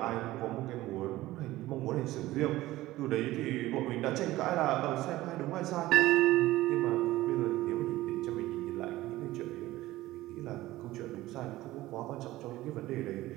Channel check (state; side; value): quieter; left; 16.9 dB